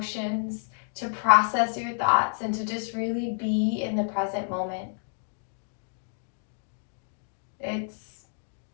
to process your thoughts, and to just really be in the present moment.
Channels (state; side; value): silent; right; digital silence